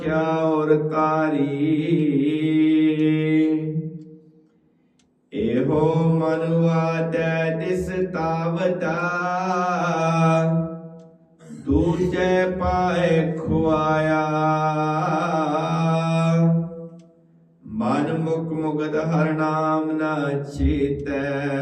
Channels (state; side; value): identical; both; correlation 1.00